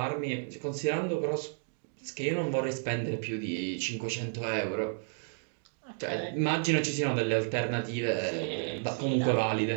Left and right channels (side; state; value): left; silent; digital silence